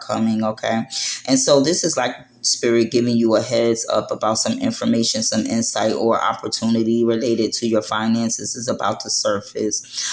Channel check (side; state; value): both; identical; correlation 1.00